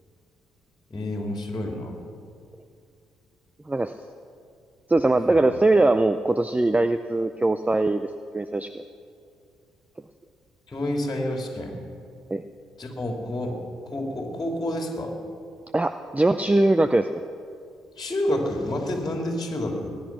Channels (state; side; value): normal; both; correlation 0.93